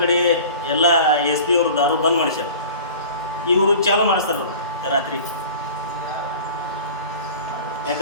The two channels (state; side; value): inverted; both; correlation -0.41